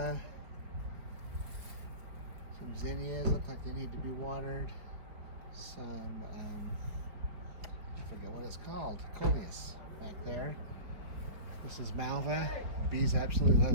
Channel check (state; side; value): late; left; 4.6 ms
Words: Some zinnias, look like they need to be watered. Some, I forget what it's called, coleus back there. This is malva. Bees absolutely love